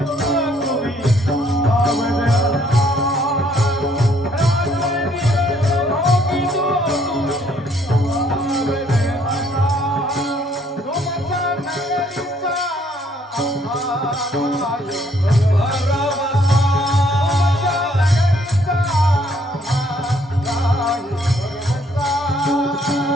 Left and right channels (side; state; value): both; normal; correlation 0.65